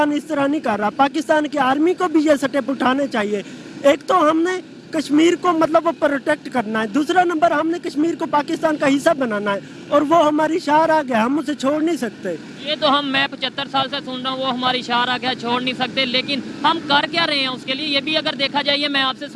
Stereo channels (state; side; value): identical; both; correlation 1.00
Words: इस तरह नहीं कर रहा। पाकिस्तान की आर्मी को भी ये स्टेप उठाने चाहिए। एक तो हमने कश्मीर को मतलब वो प्रोटेक्ट करना है, दूसरा नंबर हमने कश्मीर को पाकिस्तान का हिस्सा बनाना है और वो हमारी शार आ गया, हम उसे छोड़ नहीं सकते। ये तो मैं 75 साल से सुन रहा हूँ, वो हमारी शार आ गया, छोड़ नहीं सकते, लेकिन हम कर क्या रहे हैं उसके लिए? ये भी अगर देखा जाए, मैं आपसे